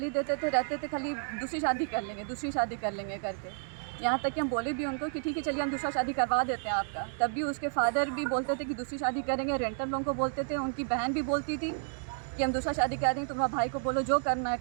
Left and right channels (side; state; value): left; silent; 57 dB below the other